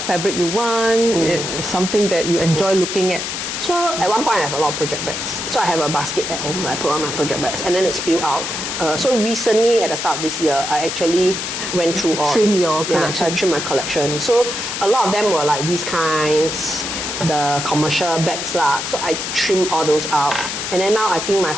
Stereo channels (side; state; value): left; noise; hiss, 4 dB below the sound